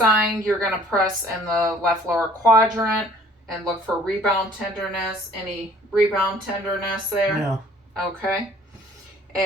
you're going to press in the left lower quadrant and look for rebound tenderness. Any rebound tenderness there? No. Okay.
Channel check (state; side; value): normal; both; correlation 0.55